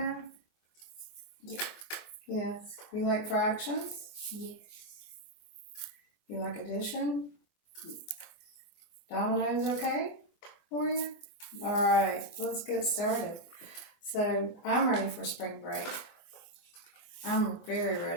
Yeah. Yes. You like fractions? Yes. You like addition? Dominoes okay for you? Alright, let's get started. So I'm ready for spring break. I'm very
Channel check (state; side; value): late; right; 24 ms